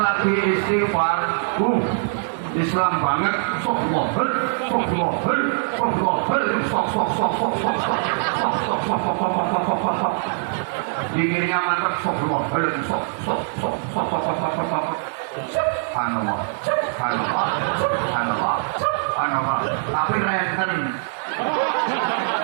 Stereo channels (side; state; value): left; silent; digital silence